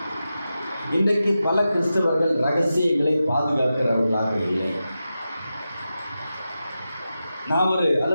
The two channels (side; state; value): both; inverted; correlation -0.91